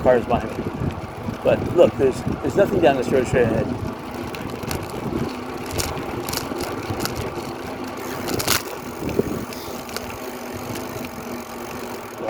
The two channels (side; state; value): both; identical; correlation 1.00